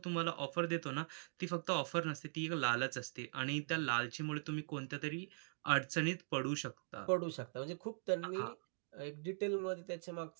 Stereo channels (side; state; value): left; silent; digital silence